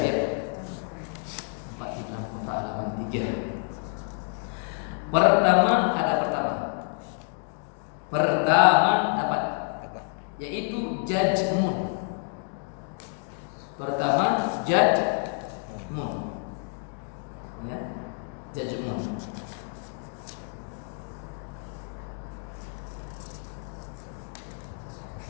ya. 4 di dalam kotak halaman 3. Pertama dapat yaitu jajmun. Pertama jajmun. Ya, jajmun.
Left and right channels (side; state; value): right; silent; 56 dB below the other